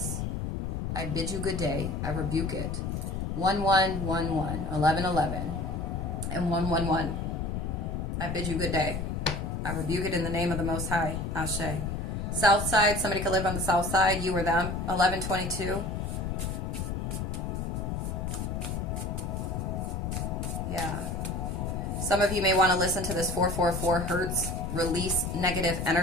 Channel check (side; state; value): left; noise; rumble, 2 dB below the sound